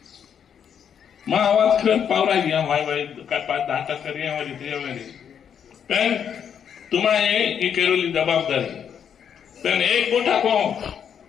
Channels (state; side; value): quieter; right; 8.1 dB